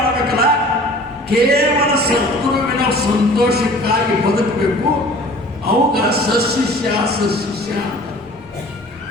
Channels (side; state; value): both; normal; correlation 0.46